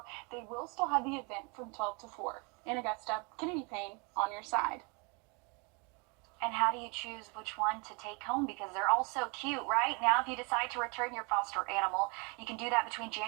they will still have the event from 12 to 4. In Augusta, Kennedy Payne on your side. And how do you choose which one to take home? Because they're all so cute, right? Now, if you decide to return your foster animal, you can do that between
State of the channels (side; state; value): left; quieter; 32.0 dB